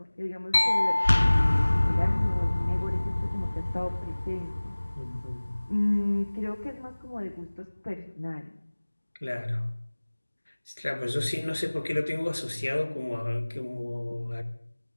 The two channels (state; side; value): inverted; both; correlation -1.00